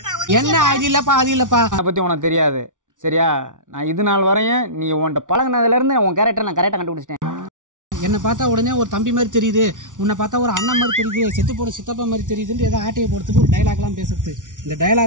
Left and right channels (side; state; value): left; late; 0.87 ms